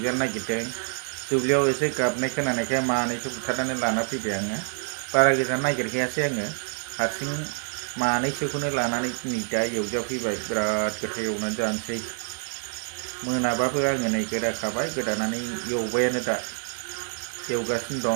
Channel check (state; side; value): silent; left; digital silence